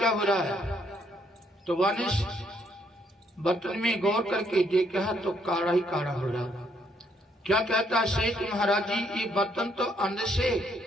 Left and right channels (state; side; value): normal; both; correlation 0.71